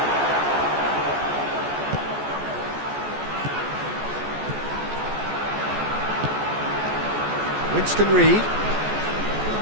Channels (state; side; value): late; left; 14 ms